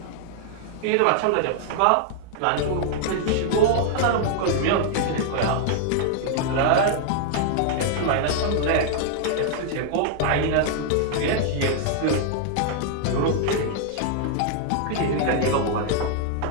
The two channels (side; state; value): both; different; correlation -0.01